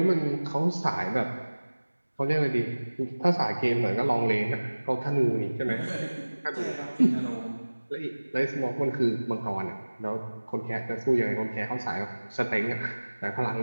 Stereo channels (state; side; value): inverted; both; correlation -1.00